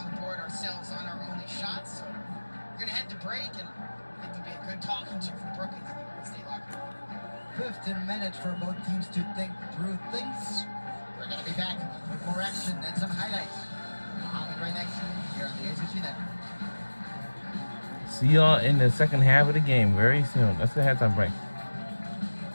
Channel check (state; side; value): inverted; both; correlation -1.00